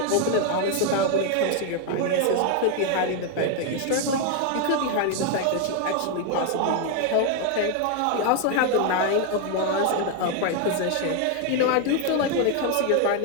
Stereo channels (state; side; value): different; both; correlation 0.01